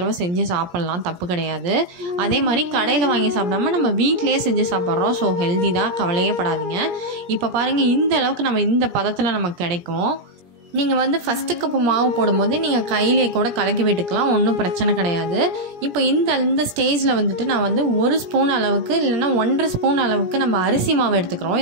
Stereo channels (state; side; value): late; left; 17 ms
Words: செஞ்சு சாப்பிட்லாம், தப்பு கிடையாது. அதே மாதிரி கடையில் வாங்கி சாப்பிடாம நம்ம வீட்டிலேயே செஞ்சு சாப்பிட்றோம். ஸோ ஹெல்தி தான், கவலையே படாதீங்க. இப்போ பாருங்கள், இந்த அளவுக்கு நம்ம இந்த பதத்தில் நமக்கு கிடைக்கும். நீங்கள் வந்து ஃபஸ்ட்டு கப்பு மாவு போடும்போது நீங்கள் கையிலே கூட கலக்கி விட்டுக்கலாம், ஒன்றும் பிரச்சனை கிடையாது. இப்போ இந்த ஸ்டேஜில் வந்துட்டு நான் வந்து 1 ஸ்பூன் அளவுக்கு இல்லைன்னா 1.5 ஸ்பூன் அளவுக்கு நம்ம அரிசி மாவு எடுத்துக்கிறோம்.